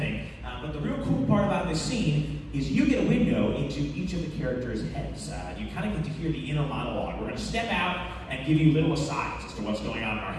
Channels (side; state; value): both; identical; correlation 1.00